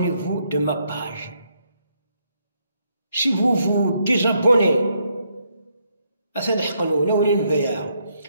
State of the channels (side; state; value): both; inverted; correlation -0.74